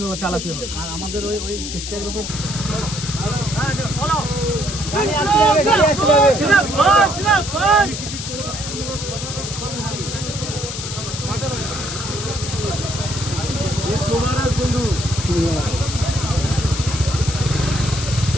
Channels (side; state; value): left; noise; hiss, 7 dB below the sound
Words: চালাতে হবে। আর আমাদের ওই চেষ্টার ব্যাপার বন্ধু।